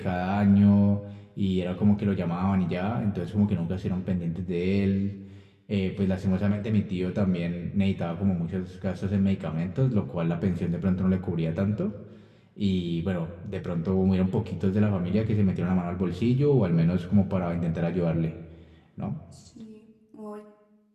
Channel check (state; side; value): identical; both; correlation 1.00